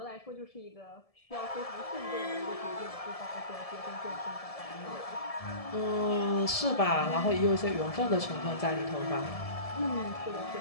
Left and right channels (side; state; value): right; late; 1.7 ms